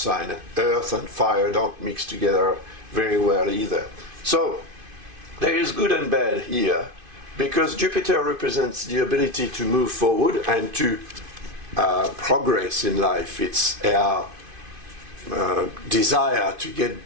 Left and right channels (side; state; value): left; late; 2.5 ms